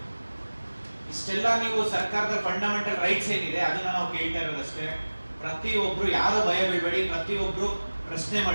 ಇಷ್ಟೆಲ್ಲ ನೀವು ಸರ್ಕಾರದ ಫಂಡಮೆಂಟಲ್ ರೈಟ್ಸ್ ಏನಿದೆ ಅದನ್ನ ನಾವು ಕೇಳ್ತಾ ಇರೋದಷ್ಟೇ. ಪ್ರತಿಯೊಬ್ರು ಯಾರು ಭಯ ಬೀಳ್ಬೇಡಿ, ಪ್ರತಿಯೊಬ್ರು ಪ್ರಶ್ನೆ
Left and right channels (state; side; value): inverted; both; correlation -1.00